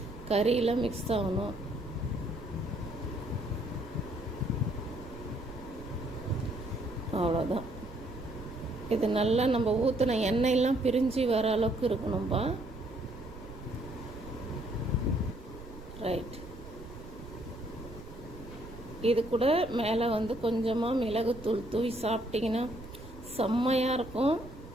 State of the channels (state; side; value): noise; right; rumble, 15 dB below the sound